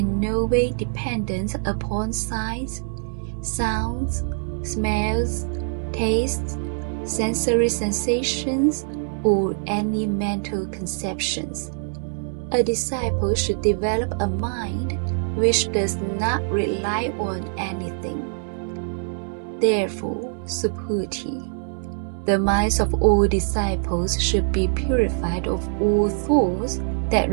no way dependent upon sights, sounds, smells, tastes, sensory sensations, or any mental conceptions. A disciple should develop a mind which does not rely on anything. Therefore, Subhuti, the minds of all disciples should be purified of all thoughts that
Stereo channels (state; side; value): silent; left; digital silence